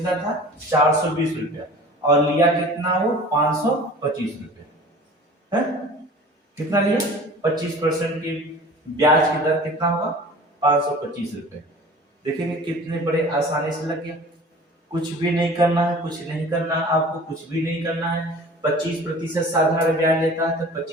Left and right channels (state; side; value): normal; both; correlation 0.43